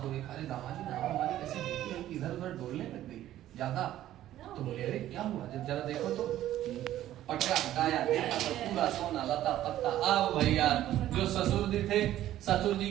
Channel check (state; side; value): quieter; left; 13.1 dB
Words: को देखा, अरे दामाद जी नाव हमारी कैसे देखी है कि इधर उधर डोलने लग गई ज्यादा। तो बोले अरे क्या हुआ, जब जरा देखो तो पटका हटाया, देखा तो पूरा सोना लता पत्ता। अब भैया जो ससुर जी थे, ससुर जी